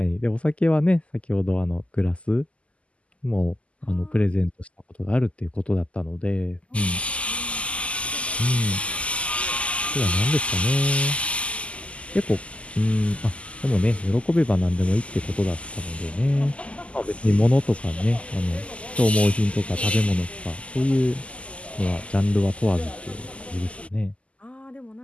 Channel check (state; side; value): late; right; 0.059 ms